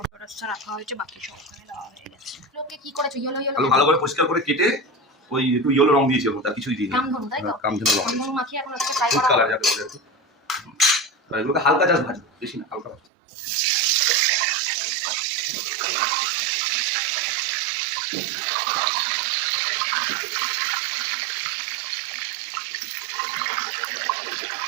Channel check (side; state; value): left; drops out; at 13.0 s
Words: বেরেস্তা রাখা হয়েছে, বাকি সব ওখানে দেওয়া হয়ে গেছে। লোকে কি করেছো, ইয়েলো ইয়েলো ভালো করে পরিষ্কার করে কেটে ওই একটু ইয়েলো রং দিয়েছিল, তার কিছুই দিইনি। কামধনু তাই তো, কামধনু রং কামধনু মাখিয়ে এখন হচ্ছে ফ্রাই ফুড করা কালার হবে। যাকে বলে আর কি। আর এগুলোকে হালকা জাস্ট ভাজো, বেশি না, হালকা ভাজো।